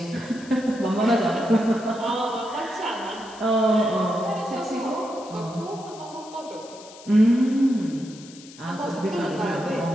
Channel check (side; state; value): left; noise; hiss, 20 dB below the sound